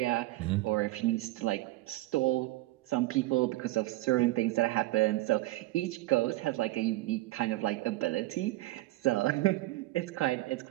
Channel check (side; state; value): left; quieter; 18.6 dB